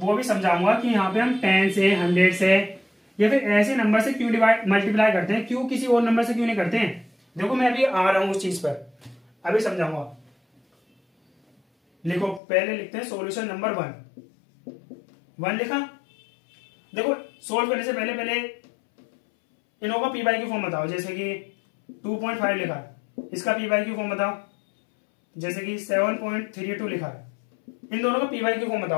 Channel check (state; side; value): drops out; right; at 12.4 s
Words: भी समझाऊंगा कि यहाँ पे हम 10 से 100 से या फिर ऐसे नंबर से क्यों मल्टीप्लाई करते हैं, क्यों किसी और नंबर से क्यों नहीं करते हैं। देखो मैं अभी आ रहा हूं उस चीज पर, अभी समझाऊंगा। लिखो, पहले लिखते हैं सॉल्यूशन नंबर 1 लिखा। देखो सोल्व करने से पहले इनों का पी बाई क्यू फॉर्म बताओ। जैसे कि 2.5 लिखा है, इसका पी बाई क्यू फॉर्म बताओ। जैसे कि 7.32 लिखा है, इन दोनों का पी बाई क्यू फॉर्म